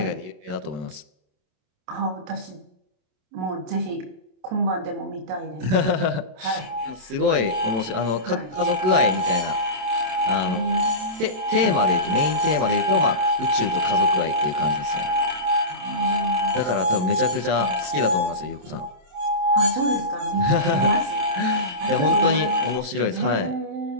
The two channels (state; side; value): late; left; 27 ms